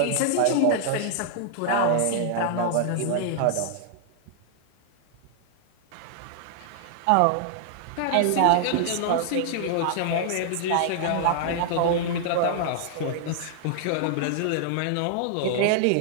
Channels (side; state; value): both; different; correlation -0.01